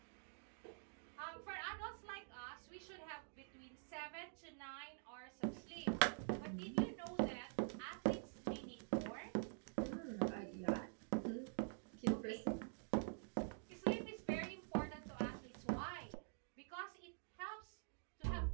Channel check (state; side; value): silent; left; digital silence